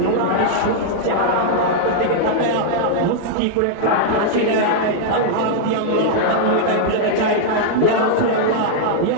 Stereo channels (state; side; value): different; both; correlation -0.01